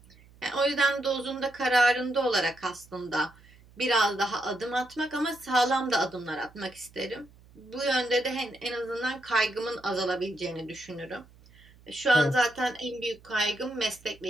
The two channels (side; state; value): right; noise; hum, 26 dB below the sound